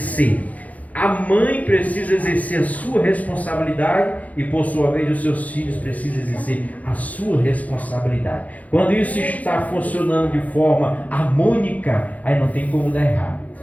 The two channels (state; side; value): late; right; 0.074 ms